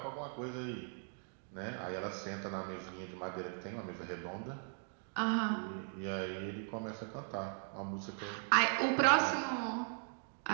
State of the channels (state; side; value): silent; left; 52 dB below the other